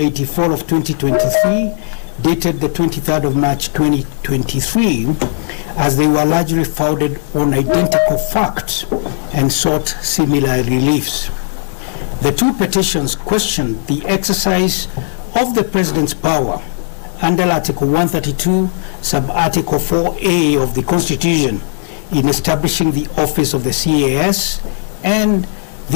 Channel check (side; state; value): right; silent; digital silence